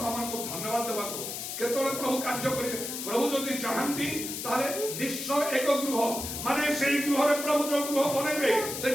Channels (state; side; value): noise; left; hiss, 6 dB below the sound